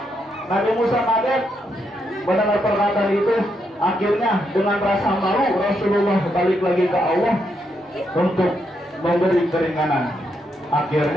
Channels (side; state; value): both; normal; correlation 0.80